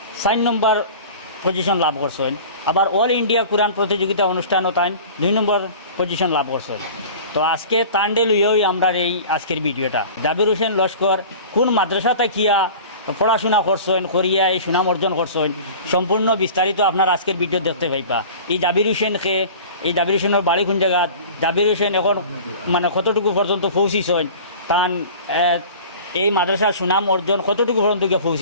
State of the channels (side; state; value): both; inverted; correlation -0.40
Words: 4 নম্বর পজিশন লাভ করছেন। আবার অল ইন্ডিয়া কোরআন প্রতিযোগিতা অনুষ্ঠানও তাই 2 নম্বর পজিশন লাভ করছেন। তো আজকে তান্ডে লইয়াই আমরা এই আজকের ভিডিওটা জাবির হোসেন লস্কর কোন মাদ্রাসা থাকিয়া পড়াশোনা করছেন করিয়া এই সুনাম অর্জন করছেন সম্পূর্ণ বিস্তারিত আপনার আজকের ভিডিও দেখতে পাইবা। এই জাবির হোসেনকে এই জাবির হোসেনের বাড়ি কোন জায়গা, জাবির হোসেন এখন মানে কতটুকু পর্যন্ত পৌঁছিছেন, তান এই মাদ্রাসার সুনাম অর্জন কতটুকু পর্যন্ত গিয়ে